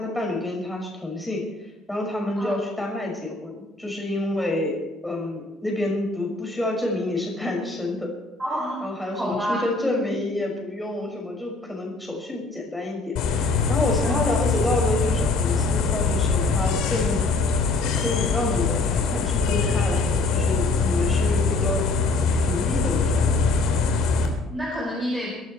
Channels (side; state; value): right; quieter; 3.2 dB